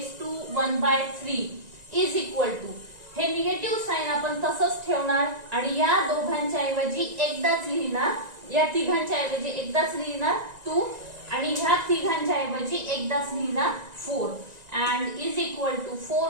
to 1/3 is equal to, हे निगेटिव्ह साइन आपण तसंच ठेवणार आणि या दोघांच्या ऐवजी एकदाच लिहिणार या तिघांच्या ऐवजी एकदाच लिहिणार 2 आणि ह्या तिघांच्या ऐवजी एकदाच लिहिणार 4 and is equal to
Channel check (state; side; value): late; left; 1.9 ms